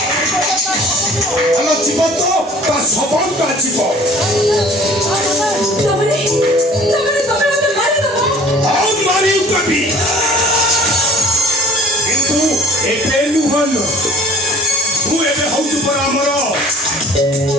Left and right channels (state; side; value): normal; both; correlation 0.50